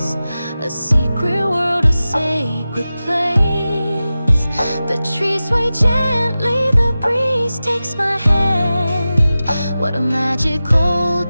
a secret world, a sacred place. The trees sway gently, the breeze takes my hand. What a magical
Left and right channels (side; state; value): both; inverted; correlation -0.95